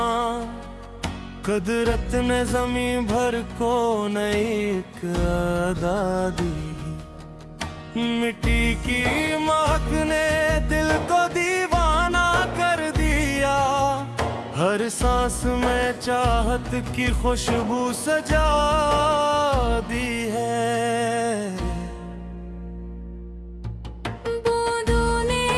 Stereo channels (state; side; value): identical; both; correlation 1.00